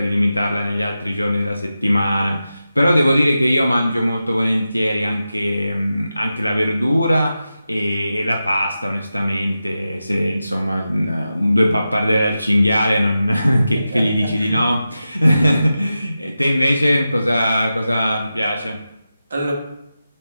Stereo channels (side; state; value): both; inverted; correlation -0.91